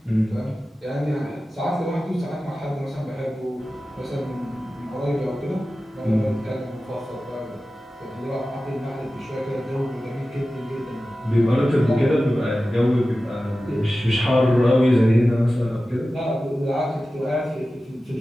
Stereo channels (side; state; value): both; normal; correlation 0.95